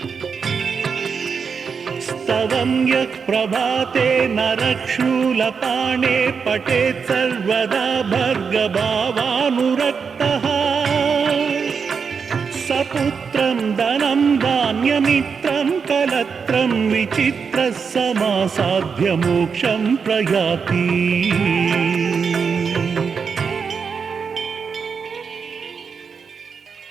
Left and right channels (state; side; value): quieter; left; 5.9 dB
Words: स्तवं यः प्रभाते नरक्षूलपाणे पठेत् सर्वदा भर्गभावानुरक्तः सपुत्रं धनं धान्यमित्रं कलत्रं विचित्रः समासाध्य मोक्षं प्रयाति